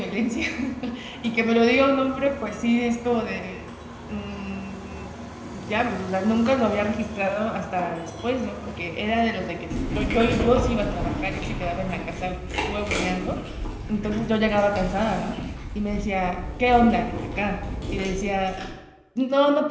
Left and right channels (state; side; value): identical; both; correlation 1.00